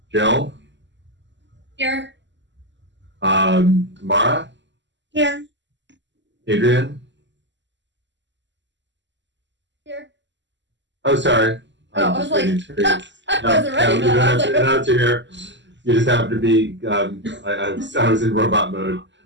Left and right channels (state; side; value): late; left; 0.53 ms